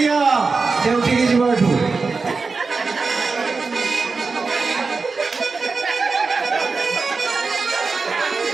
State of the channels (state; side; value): quieter; left; 4.3 dB